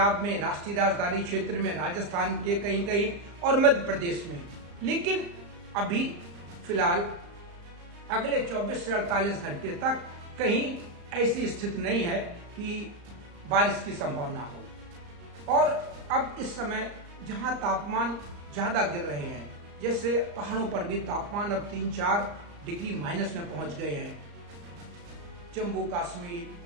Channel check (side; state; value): left; late; 35 ms